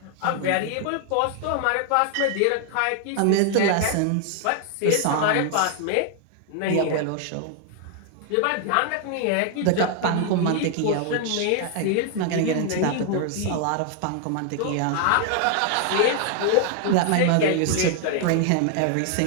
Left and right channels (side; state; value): both; different; correlation 0.00